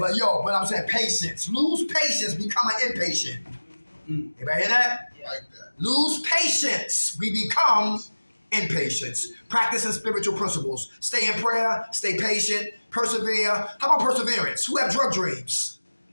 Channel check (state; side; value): inverted; both; correlation -1.00